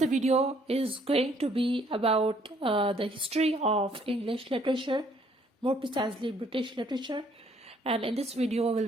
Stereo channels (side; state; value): both; normal; correlation 0.64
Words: video is going to be about the history of English literature, more precisely British literature. And in this video, we'll